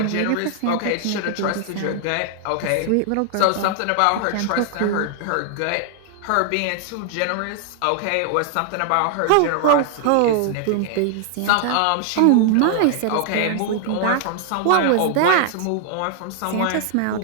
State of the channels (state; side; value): different; both; correlation 0.00